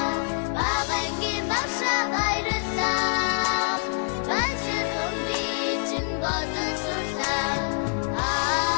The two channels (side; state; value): right; silent; digital silence